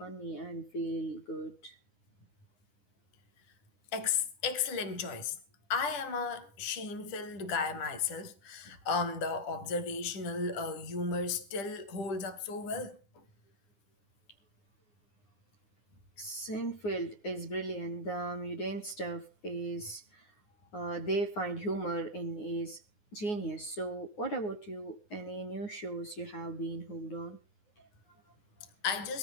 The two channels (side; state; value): right; late; 10 ms